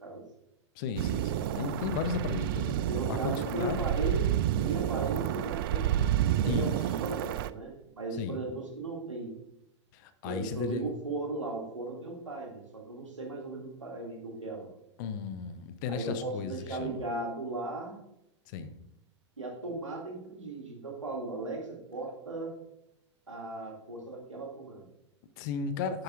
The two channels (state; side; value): quieter; left; 4.0 dB